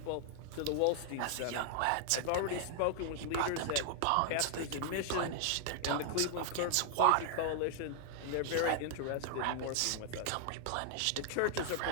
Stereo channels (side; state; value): both; different; correlation 0.00